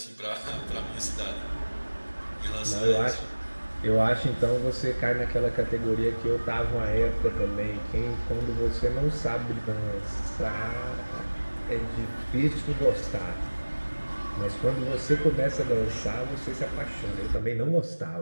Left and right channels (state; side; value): inverted; both; correlation -1.00